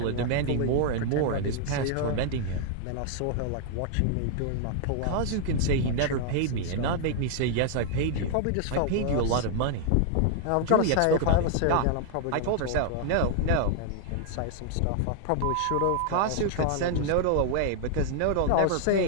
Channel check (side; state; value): both; different; correlation 0.00